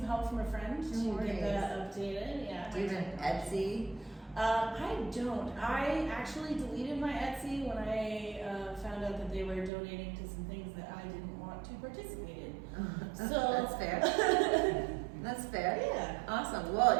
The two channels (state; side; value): drops out; left; at 9.7 s